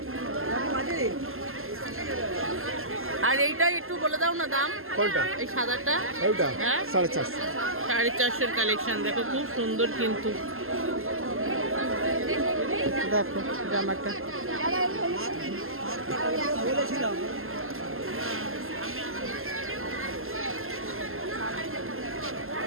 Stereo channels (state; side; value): late; left; 0.61 ms